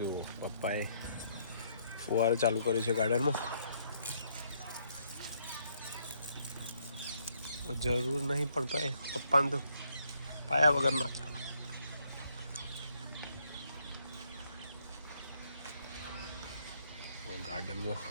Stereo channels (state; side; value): inverted; both; correlation -0.71